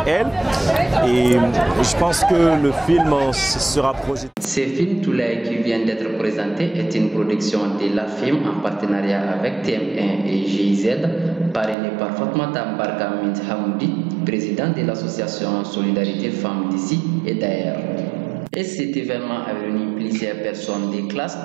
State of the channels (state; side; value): drops out; left; at 11.8 s